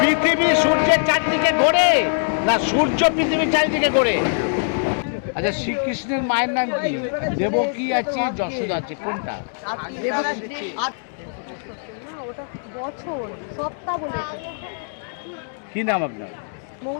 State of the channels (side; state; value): right; silent; digital silence